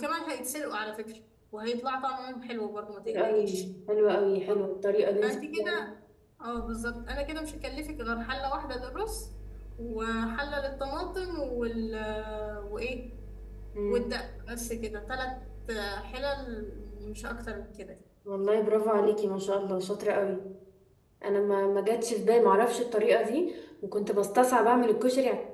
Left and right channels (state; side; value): identical; both; correlation 1.00